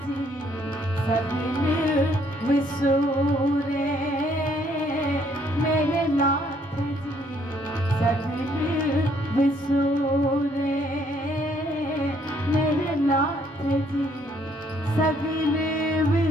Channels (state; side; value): normal; both; correlation 0.67